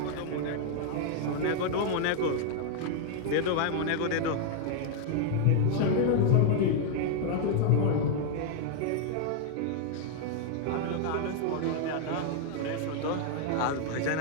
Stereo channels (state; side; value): different; both; correlation 0.00